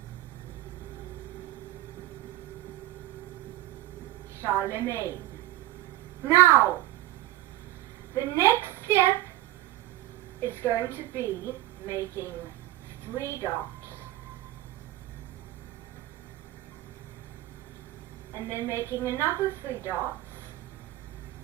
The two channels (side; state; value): left; quieter; 16.0 dB